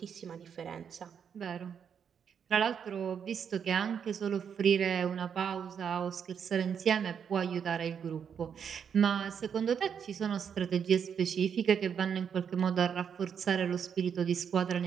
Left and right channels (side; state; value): left; quieter; 7.5 dB